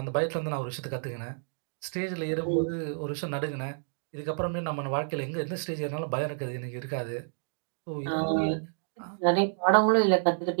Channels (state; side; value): silent; left; digital silence